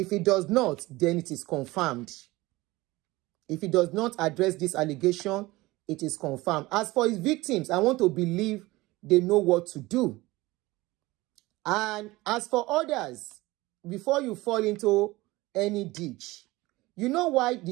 he does not, then it is confirmed. If he does not address this allegation, it is confirmed. As for his victims, I want to believe they know what to do. And as for others, before you fall into any ditch, you know why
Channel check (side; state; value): left; quieter; 20.0 dB